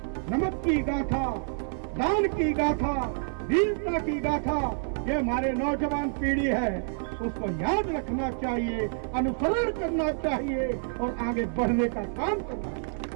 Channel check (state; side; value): silent; left; 55 dB below the other